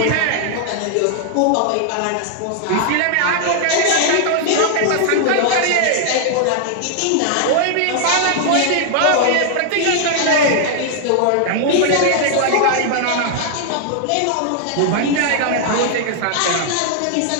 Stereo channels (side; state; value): both; different; correlation 0.00